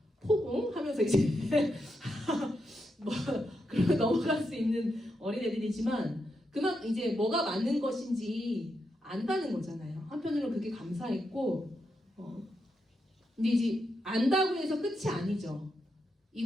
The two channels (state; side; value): normal; both; correlation 0.84